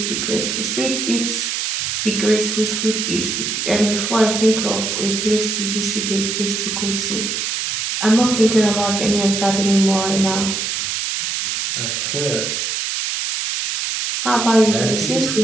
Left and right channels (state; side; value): noise; right; hiss, 1 dB below the sound